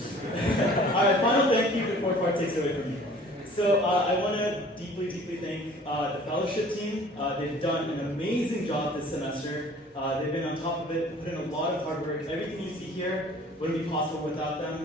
All right, final thank you before Part takes it away from me. So I want to deeply thank the fellowship team. They've done an amazing job this semester. They've been on top of it, put in a lot of hard work. Everything you see here wouldn't be possible without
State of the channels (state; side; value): normal; both; correlation 0.50